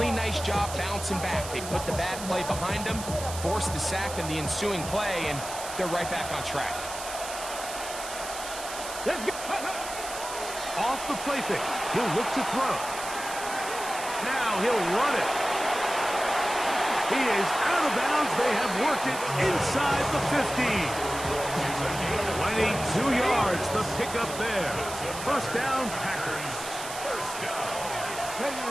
nice job bouncing back. They put the bad play behind them, forced the sack in the ensuing play, and they're right back on track. Off the play fake. He'll look to throw. Now he'll run it. He is out of bounds. They have worked it inside the 15. 22 yards, the pickup there. First down, Packers. First down.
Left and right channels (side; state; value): right; noise; hiss, 9 dB below the sound